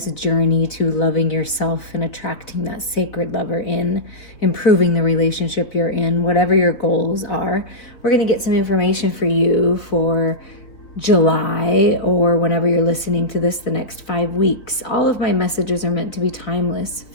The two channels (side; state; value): right; late; 3.9 ms